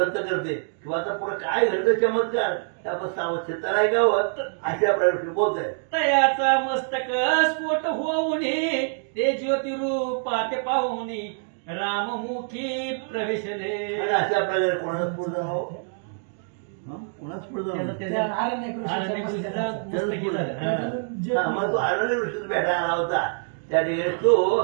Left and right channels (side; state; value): left; silent; 61 dB below the other